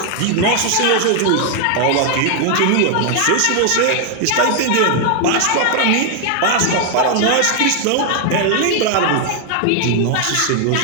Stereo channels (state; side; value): different; both; correlation 0.00